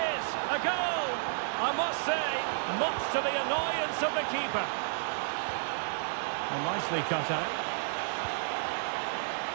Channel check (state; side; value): silent; left; digital silence